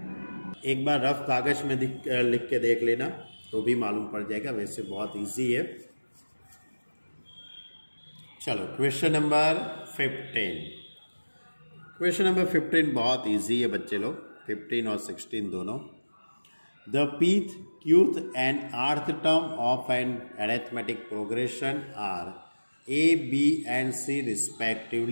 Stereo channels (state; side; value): inverted; both; correlation -1.00